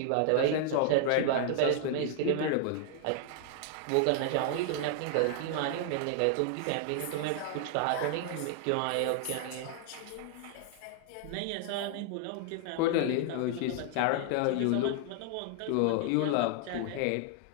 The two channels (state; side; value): different; both; correlation 0.00